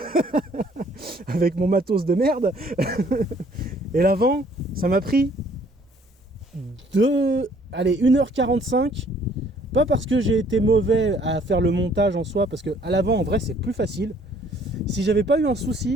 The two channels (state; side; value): normal; both; correlation 0.60